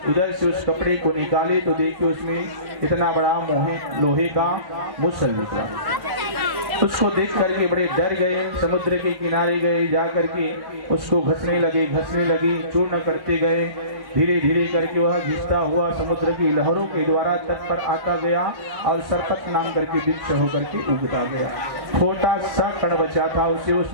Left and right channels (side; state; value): left; late; 1.1 ms